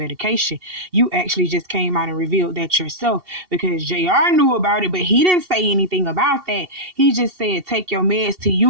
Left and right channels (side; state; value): left; late; 2.7 ms